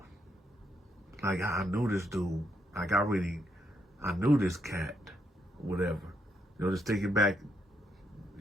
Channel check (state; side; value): normal; both; correlation 0.77